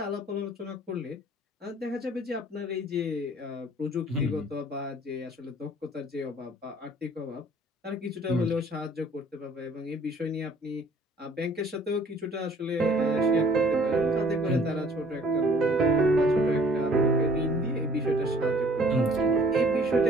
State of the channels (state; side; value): normal; both; correlation 0.56